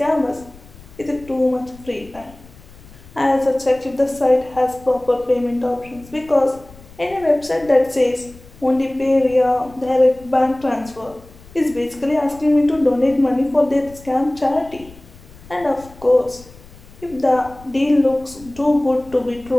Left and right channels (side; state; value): left; noise; rumble, 22 dB below the sound